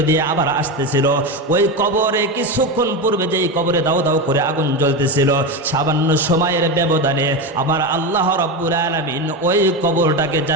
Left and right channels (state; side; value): normal; both; correlation 0.17